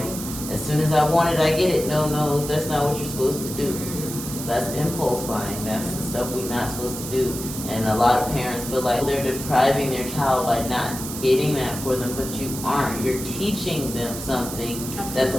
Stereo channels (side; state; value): right; noise; hiss, 8 dB below the sound